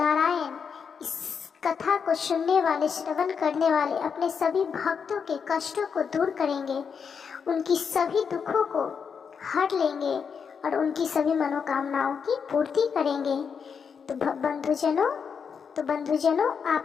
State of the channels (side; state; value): right; quieter; 6.4 dB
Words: इस कथा को सुनने वाले, श्रवण करने वाले अपने सभी भक्तों के कष्टों को दूर करेंगे, उनकी सभी दुखों को हर लेंगे और उनकी सभी मनोकामनाओं की पूर्ति करेंगे। तो बंधुजनों, तो बंधुजनों,